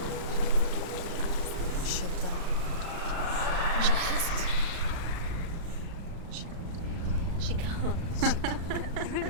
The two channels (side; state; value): left; late; 35 ms